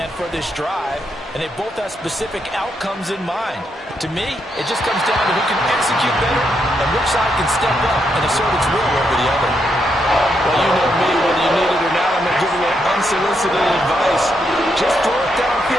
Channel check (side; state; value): both; normal; correlation 0.80